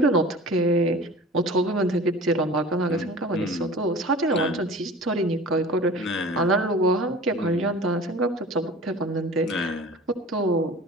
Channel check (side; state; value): both; normal; correlation 0.41